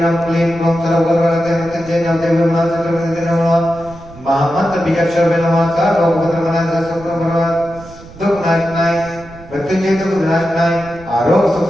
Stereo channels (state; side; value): noise; right; rumble, 19 dB below the sound